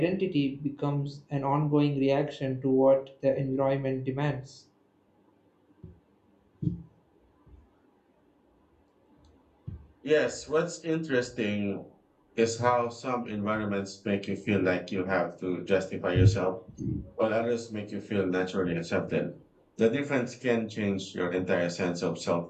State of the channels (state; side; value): identical; both; correlation 1.00